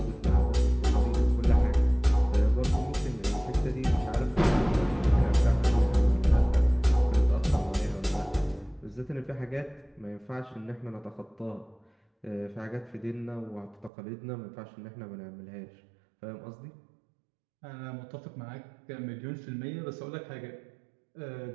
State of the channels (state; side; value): drops out; left; at 13.9 s